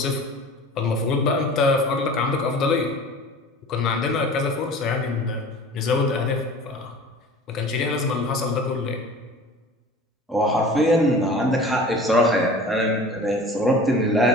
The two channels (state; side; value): normal; both; correlation 0.41